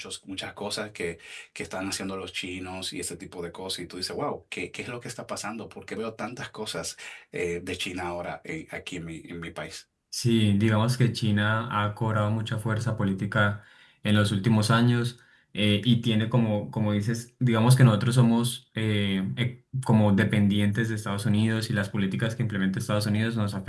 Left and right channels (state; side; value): identical; both; correlation 1.00